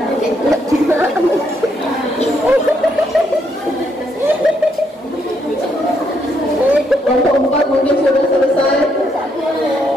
Kelompok 4 mungkin sudah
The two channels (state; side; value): normal; both; correlation 0.75